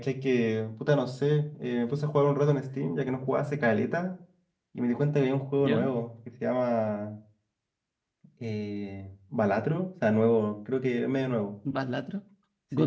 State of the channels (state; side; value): identical; both; correlation 1.00